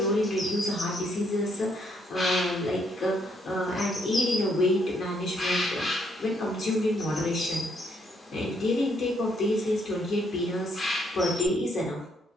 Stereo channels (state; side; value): normal; both; correlation 0.72